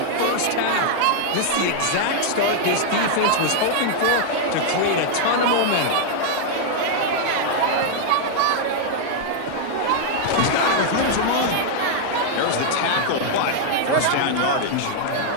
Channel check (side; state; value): both; different; correlation 0.00